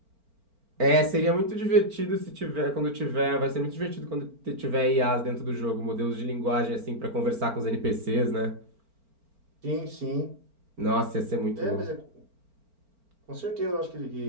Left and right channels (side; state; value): left; late; 4.4 ms